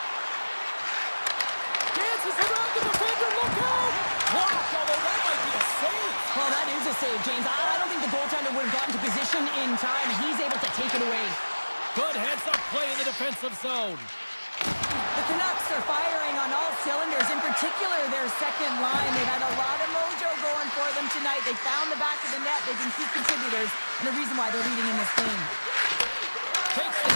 Dances around the defender. Look out! Blocked, although that might be a save. Well, that is a save, James. I don't think the goaltender would have gotten to position in time. He's able to take it away. Good heads-up play in the defensive zone. The Canucks are firing on all cylinders, in particular their second line. They've had a lot of mojo going for them tonight. They found the back of the net. They've been key contributors, and the reason why they're leading in this game. Takes the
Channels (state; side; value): inverted; both; correlation -1.00